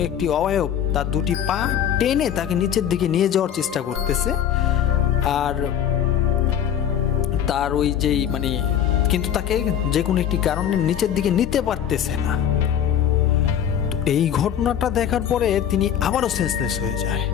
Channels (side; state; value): right; quieter; 9.6 dB